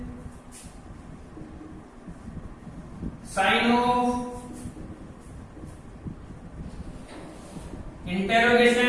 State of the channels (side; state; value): both; identical; correlation 1.00